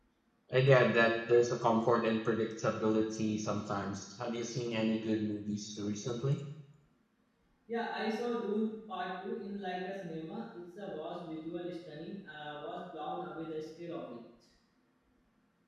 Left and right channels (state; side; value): identical; both; correlation 1.00